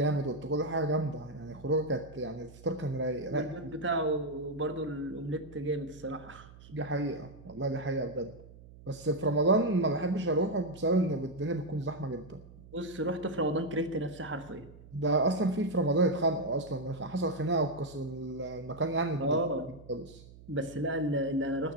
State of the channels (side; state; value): right; noise; hum, 19 dB below the sound